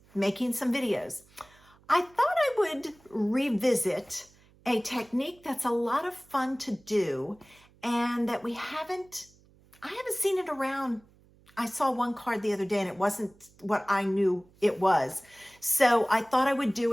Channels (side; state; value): right; noise; hum, 29 dB below the sound